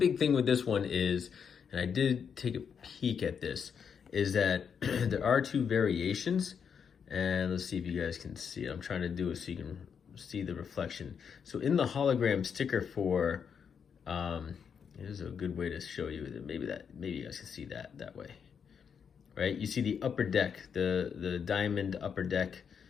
thing with this one is, and I did take a peek at this, is that there are 2 variations, and let's see if you guys can see it. I'm trying to do it so you can see the reflection. So in the hologram sticker for, here's a good way to show you that maybe you guys can see that way, right? You see the Upper Deck, the diamond Upper Deck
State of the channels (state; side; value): quieter; right; 7.0 dB